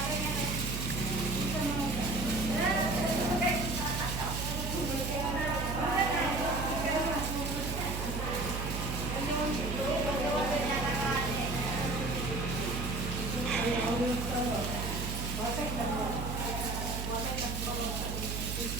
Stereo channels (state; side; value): noise; right; hum, 4 dB below the sound